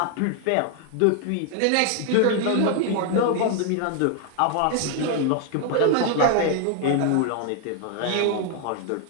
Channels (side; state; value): both; different; correlation 0.00